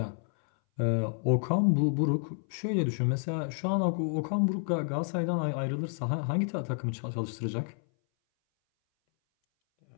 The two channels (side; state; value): right; silent; 58 dB below the other